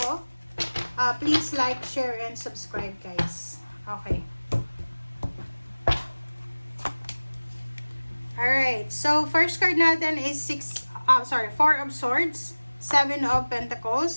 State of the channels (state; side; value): inverted; both; correlation -1.00